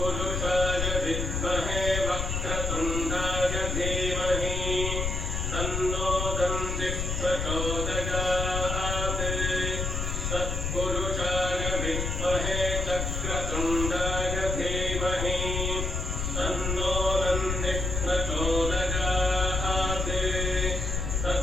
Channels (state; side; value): noise; left; rumble, 2 dB below the sound